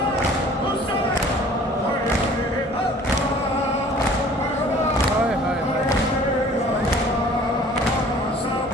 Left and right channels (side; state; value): both; normal; correlation 0.50